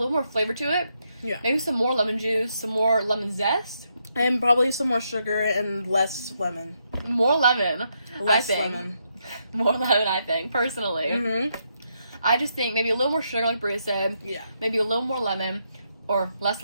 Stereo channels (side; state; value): both; inverted; correlation -0.79